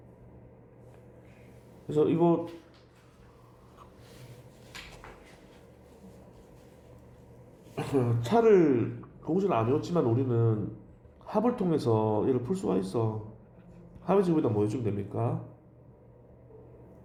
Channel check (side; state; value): both; identical; correlation 1.00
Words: 그래서 이거 차를 공식을 안 외웠지만 우리는 합을 통해서 얘를 풀 수가 있어. 합의 제곱에다 뭐 해주면 됩니까?